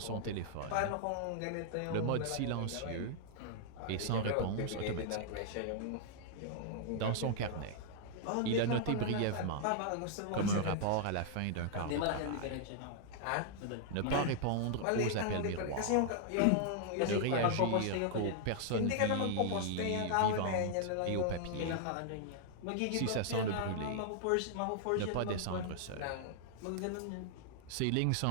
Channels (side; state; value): both; different; correlation -0.01